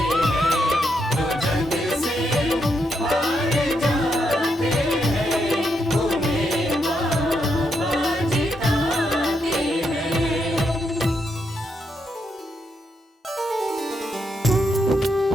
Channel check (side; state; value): both; normal; correlation 0.80